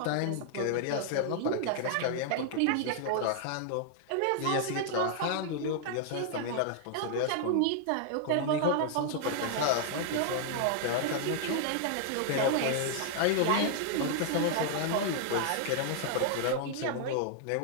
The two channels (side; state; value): both; different; correlation 0.00